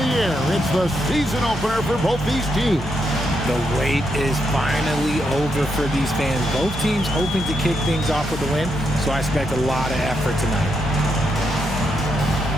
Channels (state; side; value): normal; both; correlation 0.81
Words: air. It's the season opener for both these teams. The wait is finally over for these fans. Both teams hoping to kick things off with a win, so I expect a lot of effort tonight.